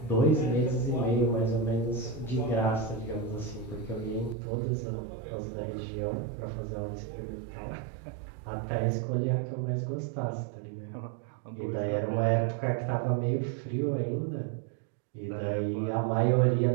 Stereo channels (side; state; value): left; drops out; at 4.4 s